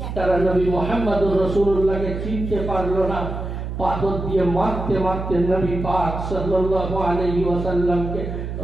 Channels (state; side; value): noise; right; hum, 6 dB below the sound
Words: তারা নবী মুহাম্মদুর রাসূলুল্লাহকে চিনতে পারলো না, পাথর দিয়ে মারতে মারতে নবী পাক সাল্লাল্লাহু আলাইহি ওয়াসাল্লামকে